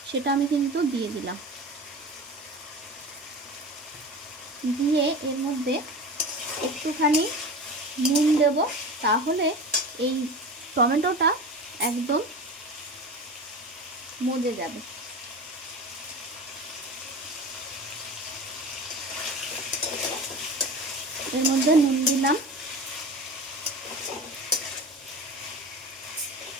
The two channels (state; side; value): normal; both; correlation 0.32